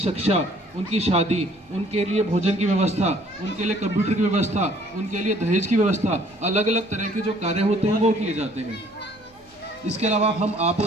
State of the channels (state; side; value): normal; both; correlation 0.59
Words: उनकी शादी, उनके लिए भोजन की व्यवस्था, उनके लिए कंप्यूटर की व्यवस्था, उनके लिए दहेज की व्यवस्था, अलग अलग तरह के जो कार्य होते हैं वो किए जाते हैं। इसके अलावा आप